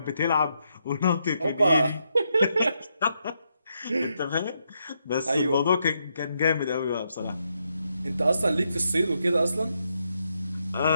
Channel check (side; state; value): both; inverted; correlation -0.80